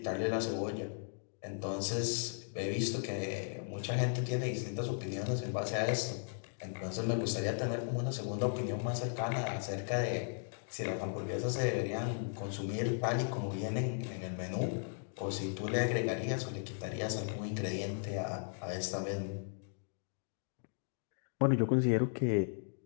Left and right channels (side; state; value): right; silent; digital silence